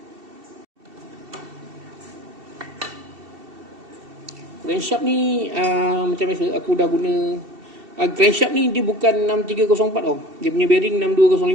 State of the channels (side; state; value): left; late; 2.7 ms